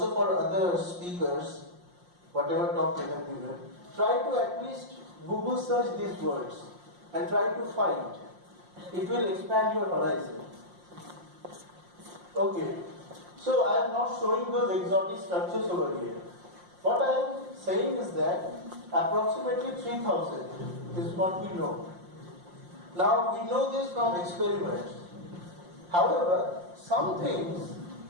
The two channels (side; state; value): left; late; 5.7 ms